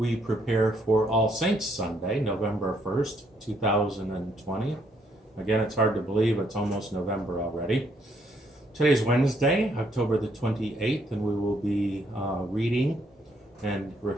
prepare for All Saints Sunday, November 1st, 2020. Again, it's hard to believe it's almost November already. Today's Wednesday, October the 28th, and we will be reading and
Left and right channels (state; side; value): normal; both; correlation 0.71